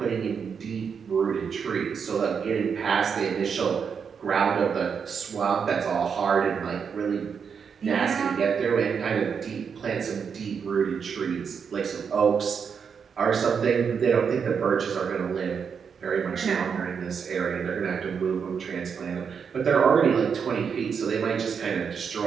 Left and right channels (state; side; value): quieter; left; 6.5 dB